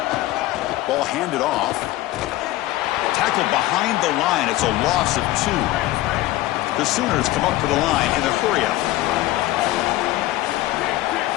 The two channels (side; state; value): right; quieter; 16.4 dB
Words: Ball handed off. Tackled behind the line. It's a loss of 2. The Sooners come up to the line in a hurry-up.